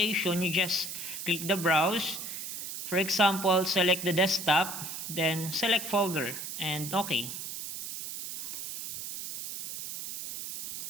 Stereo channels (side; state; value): right; noise; hiss, 7 dB below the sound